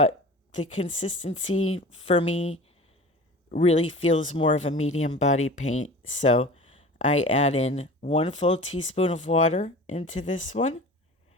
the consistency for me really feels more of a medium body paint. So I add in 1 full teaspoon of water into this one.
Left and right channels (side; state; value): both; normal; correlation 0.38